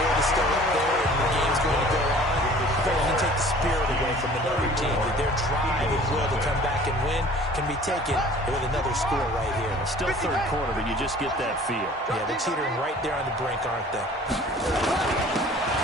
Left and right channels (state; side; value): normal; both; correlation 0.49